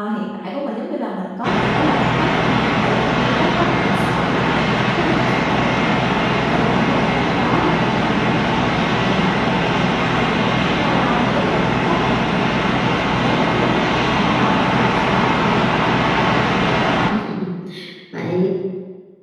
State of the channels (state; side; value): identical; both; correlation 1.00